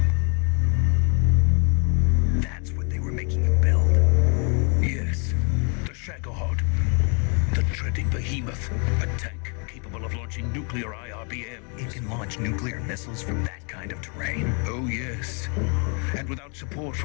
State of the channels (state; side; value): quieter; right; 36.7 dB